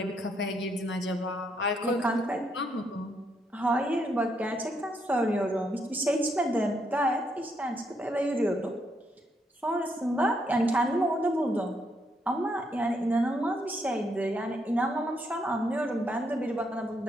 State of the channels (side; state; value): both; normal; correlation 0.76